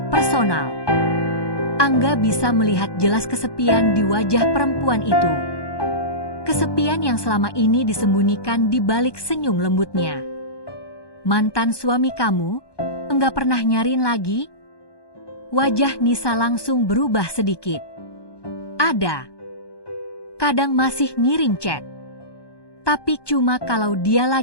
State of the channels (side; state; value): right; late; 1.2 ms